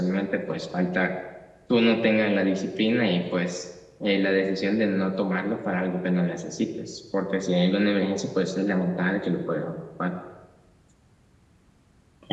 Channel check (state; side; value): identical; both; correlation 1.00